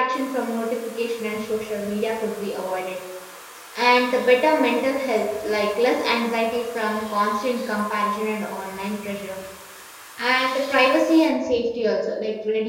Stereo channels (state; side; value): identical; both; correlation 1.00